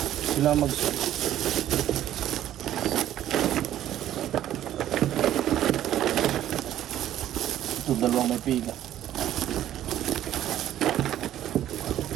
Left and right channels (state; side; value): quieter; left; 12.2 dB